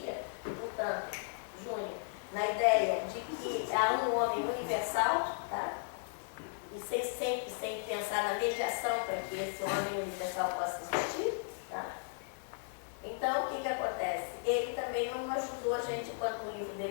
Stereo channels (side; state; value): right; silent; 54 dB below the other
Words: e portanto, Júnior, na ideia de que há um homem universal, tá? E sempre sem pensar na mediação para que esse homem universal possa existir, tá? Então, o que acontece? Ele também não ajudou a gente, quanto no livro